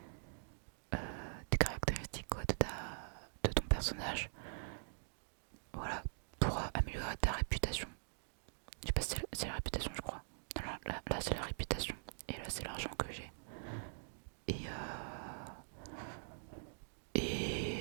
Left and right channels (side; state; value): left; silent; digital silence